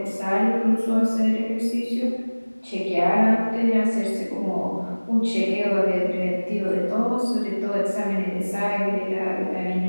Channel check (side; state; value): both; inverted; correlation -1.00